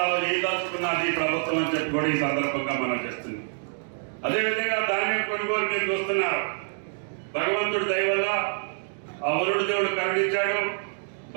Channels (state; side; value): silent; left; digital silence